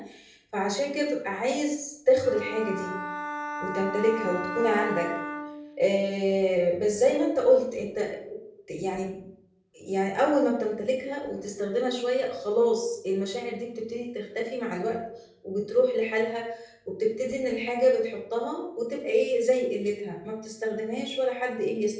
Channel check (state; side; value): identical; both; correlation 1.00